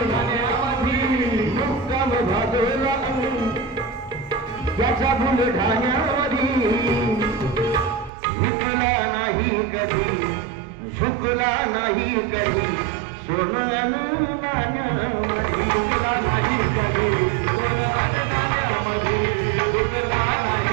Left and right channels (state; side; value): drops out; left; at 8.1 s